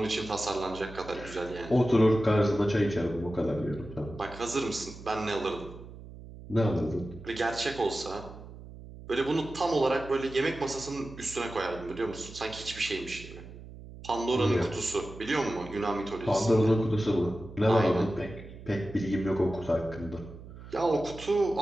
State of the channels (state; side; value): noise; right; hum, 15 dB below the sound